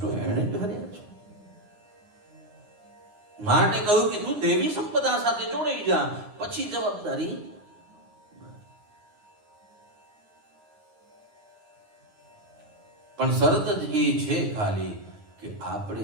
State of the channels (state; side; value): late; left; 9.9 ms